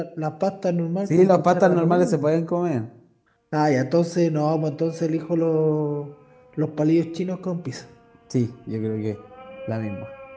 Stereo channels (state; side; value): identical; both; correlation 1.00